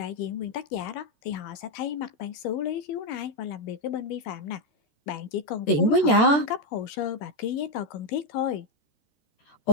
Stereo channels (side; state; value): right; late; 14 ms